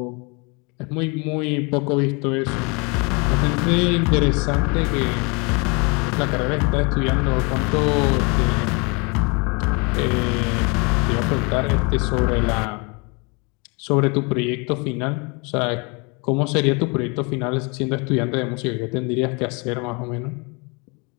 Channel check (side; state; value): right; quieter; 30.8 dB